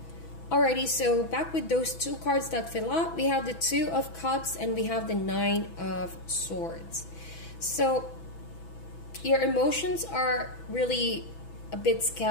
Alrighty, so back with those two cards that fell out, we have the Two of Cups and we have the Nine of Swords. So your emotions are really a bit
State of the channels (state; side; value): late; right; 6.1 ms